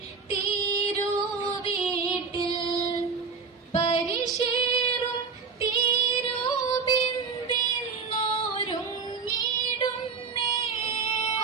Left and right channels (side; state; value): left; quieter; 5.3 dB